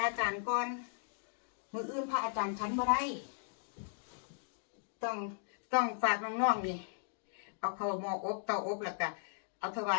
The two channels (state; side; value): silent; right; digital silence